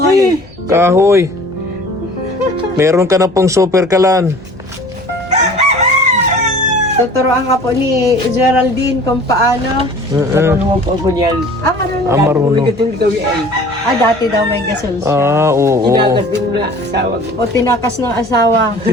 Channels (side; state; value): both; normal; correlation 0.46